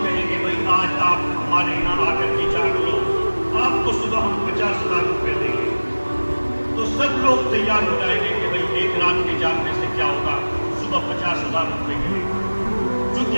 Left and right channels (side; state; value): both; inverted; correlation -1.00